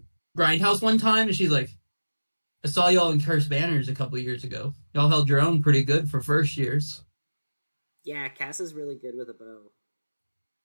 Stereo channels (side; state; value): both; inverted; correlation -1.00